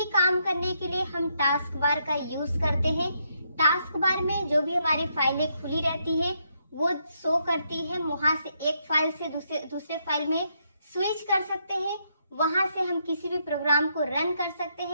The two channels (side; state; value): both; inverted; correlation -0.77